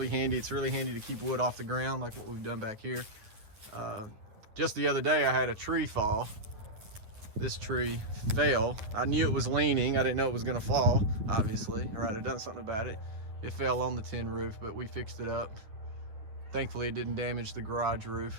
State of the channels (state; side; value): late; left; 9.4 ms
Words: handy. It's really handy to keep wood off the ground like what we've done back here. Just the other day I had a tree fall. This tree fell. I knew it was leaning. I didn't know it was gonna fall, obviously, or I'd have done something about it. It fell on the tin roof, but we fixed it up. Thankfully it didn't damage the garage